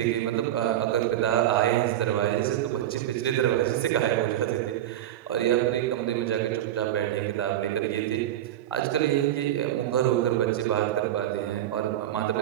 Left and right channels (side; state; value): left; quieter; 12.5 dB